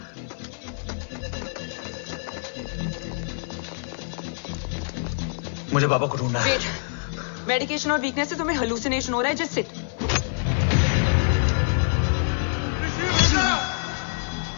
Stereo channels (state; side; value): silent; right; 61 dB below the other